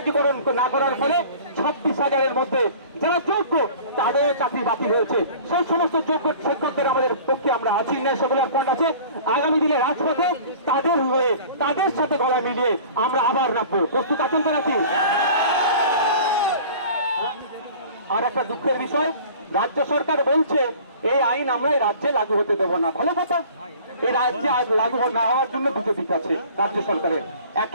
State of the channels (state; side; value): inverted; both; correlation -0.45